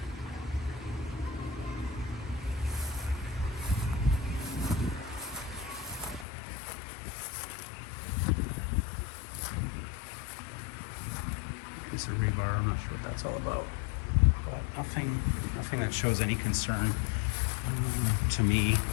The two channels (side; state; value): right; drops out; at 6.2 s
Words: piece of rebar. I'm not sure what that's all about, but nothing that shows any concern to me.